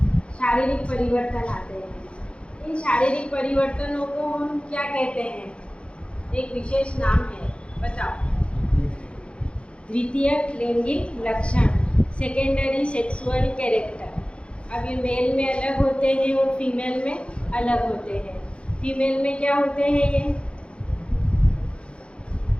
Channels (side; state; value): right; late; 0.058 ms